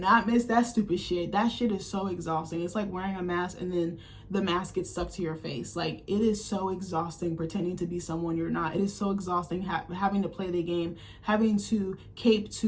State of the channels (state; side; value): identical; both; correlation 1.00